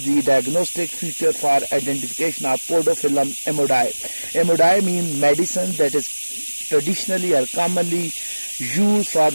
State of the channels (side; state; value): both; inverted; correlation -1.00